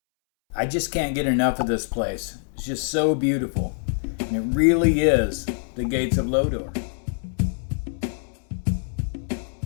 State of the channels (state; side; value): silent; right; 62 dB below the other